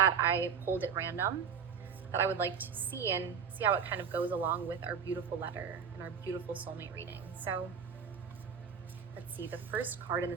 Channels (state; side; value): quieter; left; 6.9 dB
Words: I pulled at random that I would like to see and see how it kind of goes along with our beautiful letter and our beautiful soulmate reading. So let's see, the first card in